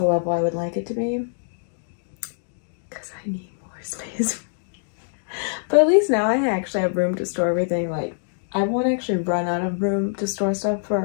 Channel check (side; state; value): right; silent; digital silence